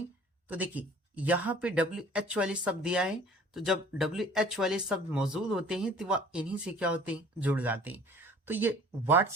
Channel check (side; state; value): both; normal; correlation 0.50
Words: तो देखिए यहाँ पे WH वाले शब्द दिया है, तो जब WH वाले शब्द मौजूद होते हैं तो वह इन्हीं से क्या होते हैं, जुड़ जाते हैं। तो ये वाट